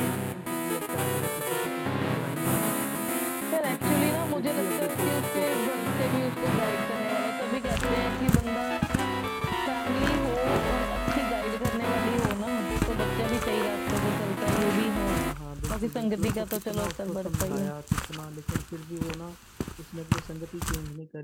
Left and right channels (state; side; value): identical; both; correlation 1.00